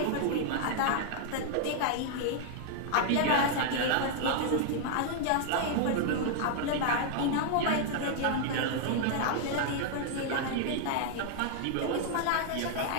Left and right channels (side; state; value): both; different; correlation 0.00